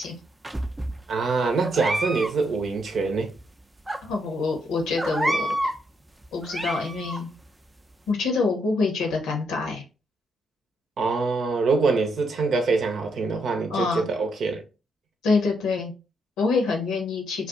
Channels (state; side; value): normal; both; correlation 0.76